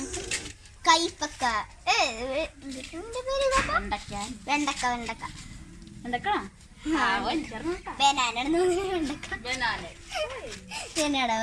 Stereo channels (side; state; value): both; identical; correlation 1.00